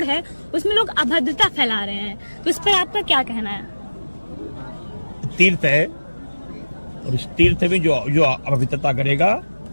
है, उसमें लोग अभद्रता फैला रहे हैं। तो इस पर आपका क्या कहना है? तीर्थ है और इस तीर्थ में जो अपवित्रता करेगा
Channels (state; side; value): inverted; both; correlation -1.00